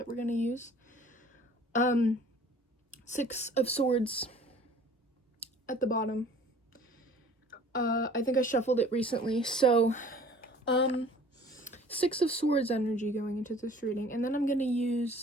we're gonna use. 6 of Swords at the bottom. I think I shuffled it recently, so 6 of Swords energy going into this reading, and then I'm gonna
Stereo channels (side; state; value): both; normal; correlation 0.50